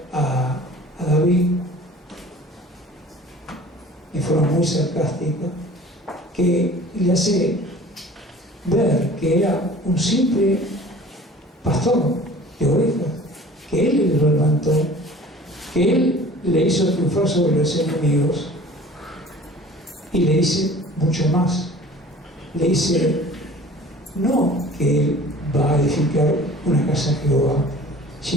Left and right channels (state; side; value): normal; both; correlation 0.45